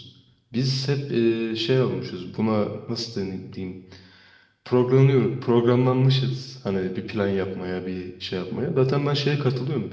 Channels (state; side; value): identical; both; correlation 1.00